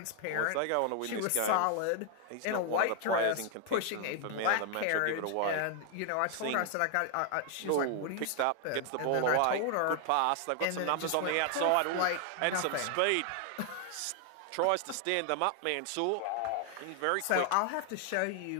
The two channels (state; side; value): different; both; correlation 0.00